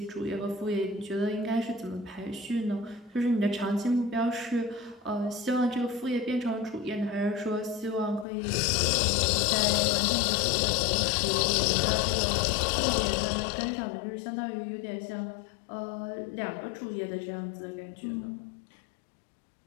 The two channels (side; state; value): right; drops out; at 8.2 s